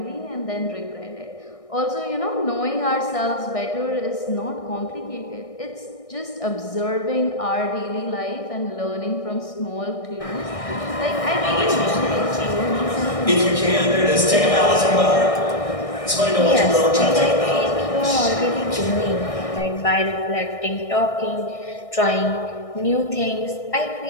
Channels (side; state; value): right; late; 1.6 ms